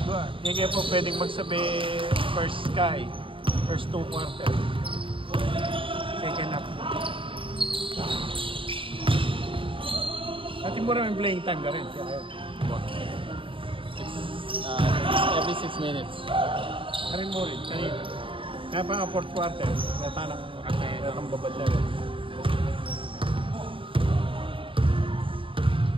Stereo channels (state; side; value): late; left; 0.25 ms